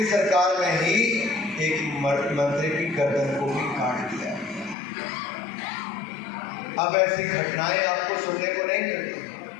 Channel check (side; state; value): right; drops out; at 4.8 s